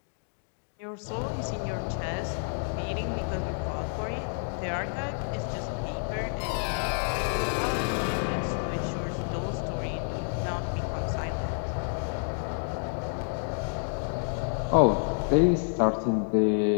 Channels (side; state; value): right; silent; 58 dB below the other